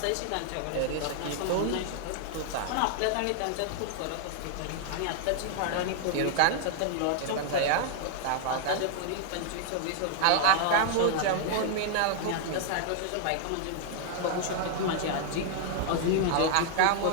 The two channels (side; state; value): both; different; correlation 0.00